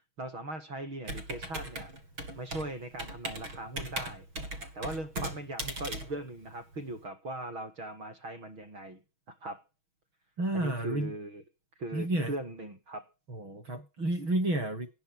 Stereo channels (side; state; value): left; late; 6.3 ms